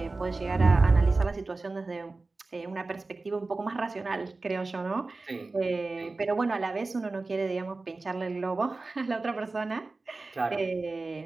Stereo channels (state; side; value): quieter; left; 3.5 dB